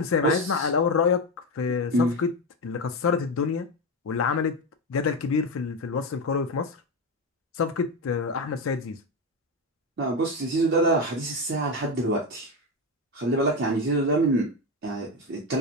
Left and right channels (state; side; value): normal; both; correlation 0.14